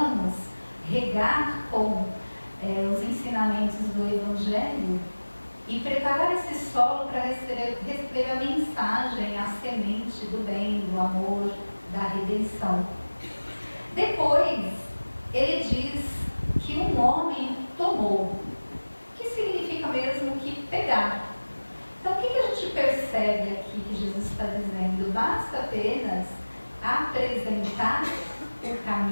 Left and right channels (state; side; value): inverted; both; correlation -1.00